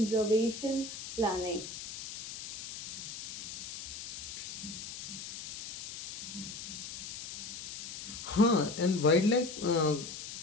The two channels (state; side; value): noise; left; hiss, 8 dB below the sound